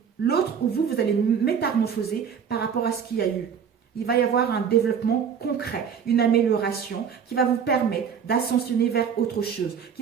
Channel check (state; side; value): quieter; left; 7.3 dB